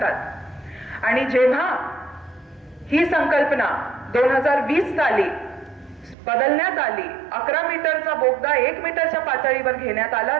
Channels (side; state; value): left; drops out; at 6.2 s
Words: आणि जेव्हा ही संकल्पना 2020 साली बदलण्यात आली, 11 मीटरचा बोगदा 1 मीटरच्या पातळीवर घेण्यात आला,